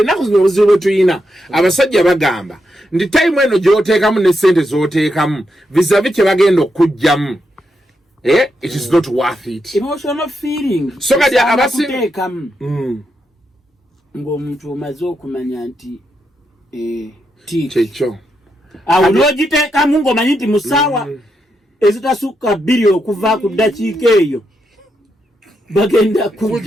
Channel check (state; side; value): normal; both; correlation 0.83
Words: zino obuzibu bwe tuyina abasajja bagamba ndi time eno gy'oteekamu ne ssente z'oteekamu vizavi kye bagenda okujjamu it is not worth it. Emotional feeling so kati abateekamu ng'omuntu omaze okumanya nti kyekyo awo n'ogiteekamu ng'omanyi nti musaawa ezitasukka 2 okuva ku ddakiika eyo bagenda